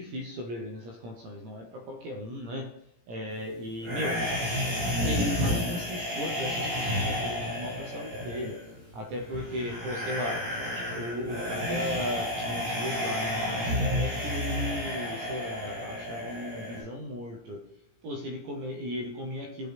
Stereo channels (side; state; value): left; late; 17 ms